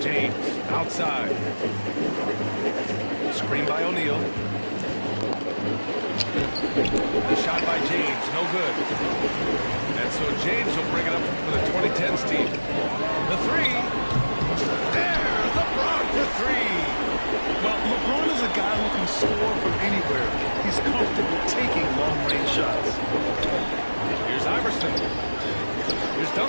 James, outside. Screen by O'Neal. The shot by James, no good. And so James will bring it up for the 2010s team. The three. There, LeBron for 3. Well, LeBron is a guy who can score from anywhere. He's comfortable taking long-range shots. Here's Iverson. Here's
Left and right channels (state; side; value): inverted; both; correlation -1.00